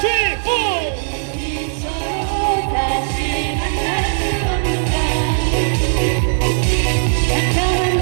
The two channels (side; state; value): left; silent; digital silence